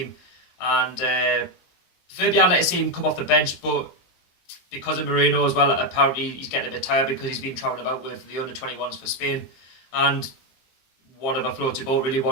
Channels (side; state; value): right; late; 23 ms